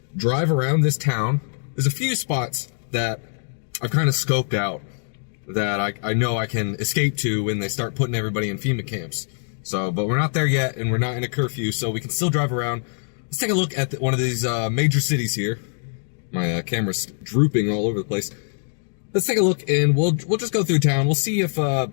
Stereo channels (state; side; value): silent; right; digital silence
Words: drive around this town. There's a few spots that I've kind of scoped out that I know I can escape to when they start putting everybody in FEMA camps. So, but we're not there yet, and we're not in a curfew, so we can still drive around. Let's take a look at one of these major cities here. My camera's drooping all over the place. Let's take a look, and we'll just go through town. We'll see if